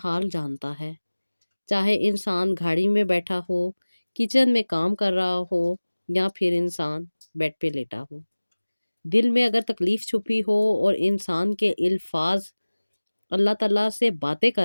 حال جانتا ہے، چاہے انسان گاڑی میں بیٹھا ہو، کچن میں کام کر رہا ہو، یا پھر انسان بیڈ پہ لیٹا ہو۔ دل میں اگر تکلیف چھپی ہو اور انسان کے الفاظ اللہ تعالیٰ سے باتیں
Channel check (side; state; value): both; inverted; correlation -1.00